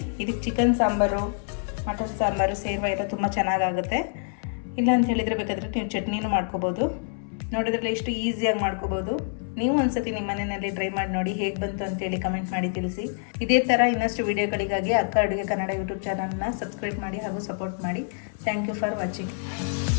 ಇದಕ್ಕೆ ಚಿಕನ್ ಸಾಂಬಾರು, ಮಟನ್ ಸಾಂಬಾರು, ಸೇರ್ವ ಎಲ್ಲ ತುಂಬ ಚೆನ್ನಾಗಾಗುತ್ತೆ. ಇಲ್ಲ ಅಂತ ಹೇಳಿದರೆ ಬೇಕಾದರೆ ನೀವು ಚಟ್ನಿನೂ ಮಾಡ್ಕೋಬೋದು. ನೋಡಿದ್ರಲ್ಲ ಎಷ್ಟು ಈಸಿಯಾಗಿ ಮಾಡ್ಕೋಬೋದು. ನೀವು ಒಂದ್ಸತಿ ನಿಮ್ಮ ಮನೆಯಲ್ಲಿ ಟ್ರೈ ಮಾಡಿ ನೋಡಿ, ಹೇಗೆ ಬಂತು ಅಂತೇಳಿ ಕಮೆಂಟ್ ಮಾಡಿ ತಿಳಿಸಿ. ಇದೇ ಥರ ಇನ್ನಷ್ಟು ವಿಡಿಯೋಗಳಿಗಾಗಿ ಅಕ್ಕ ಅಡುಗೆ ಕನ್ನಡ ಯೂಟ್ಯೂಬ್ ಚಾನಲ್ನ ಸಬ್ಸ್ಕ್ರೈಬ್ ಮಾಡಿ ಹಾಗೂ ಸಪೋರ್ಟ್ ಮಾಡಿ. Thank you for watching.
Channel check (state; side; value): silent; right; 61 dB below the other